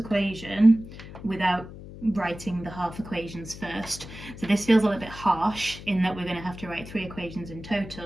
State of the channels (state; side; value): noise; left; hum, 14 dB below the sound